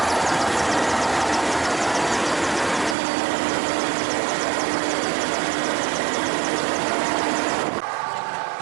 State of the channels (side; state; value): left; drops out; at 3.0 s